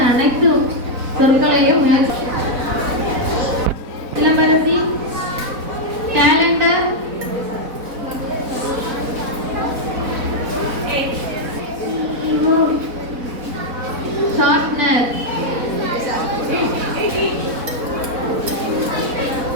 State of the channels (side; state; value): left; late; 4.1 ms